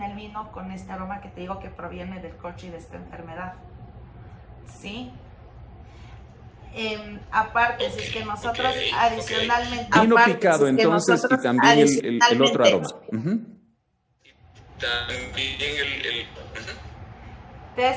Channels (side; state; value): both; identical; correlation 1.00